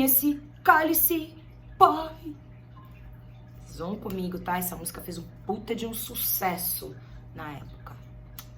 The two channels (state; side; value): identical; both; correlation 1.00